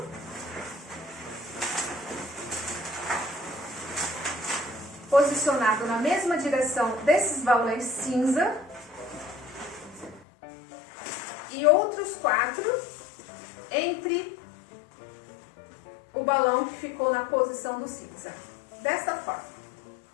posicionado na mesma direção desses balões cinza, e outros 4 entre o balão que ficou na posição do cinza. Dessa forma.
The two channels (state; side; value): drops out; right; at 10.2 s